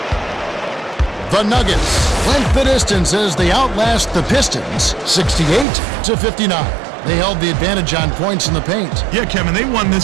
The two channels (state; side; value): drops out; left; at 5.7 s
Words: The Nuggets length the distance as they outlast the Pistons 68-59. They held the advantage on points in the paint. Yeah, Kevin, they won